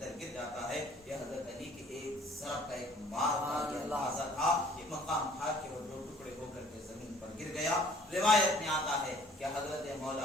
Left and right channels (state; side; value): normal; both; correlation 0.55